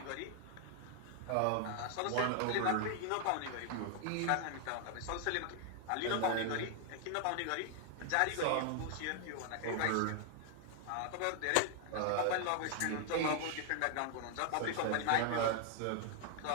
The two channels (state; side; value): different; both; correlation 0.00